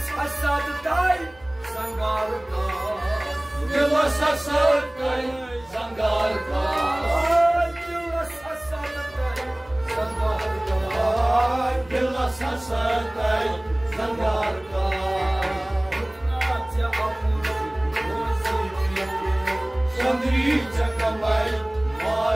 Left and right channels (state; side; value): noise; right; hum, 26 dB below the sound